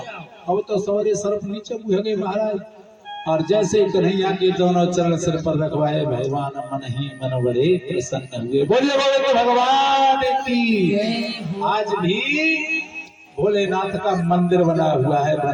अब तो सौरे सर्प नीचे मुँह गए महाराज और जैसे कन्हैया के दोनों चरण सिर पर रखवाए भगवान मन ही मन बड़े प्रसन्न हुए। बोलिए बोले तो भगवान की। आज भी भोलेनाथ का मंदिर बना हुआ है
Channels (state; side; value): identical; both; correlation 1.00